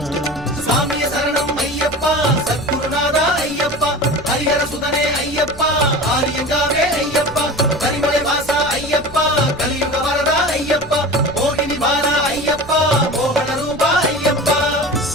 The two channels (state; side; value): noise; right; rumble, 17 dB below the sound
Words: சாமிய சரணம் ஐயப்பா, சத்குருநாதா ஐயப்பா, ஹரிஹர சுதனே ஐயப்பா, ஆரியங்காவே ஐயப்பா, கரிமலை வாசா ஐயப்பா, கலியுக வரதா ஐயப்பா, மோகினி வாரா ஐயப்பா, மோகன ரூபா ஐயப்பா.